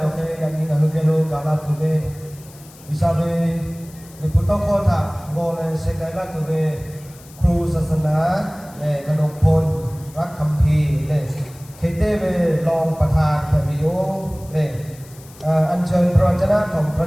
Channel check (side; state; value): left; noise; hiss, 23 dB below the sound